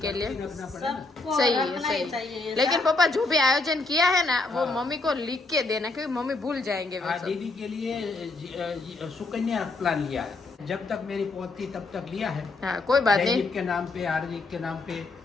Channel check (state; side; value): quieter; right; 3.5 dB